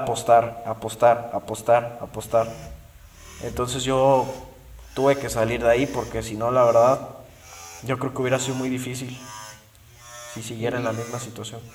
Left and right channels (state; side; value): identical; both; correlation 1.00